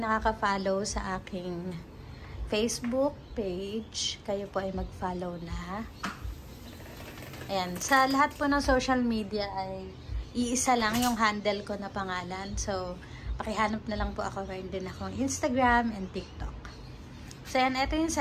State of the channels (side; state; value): both; identical; correlation 1.00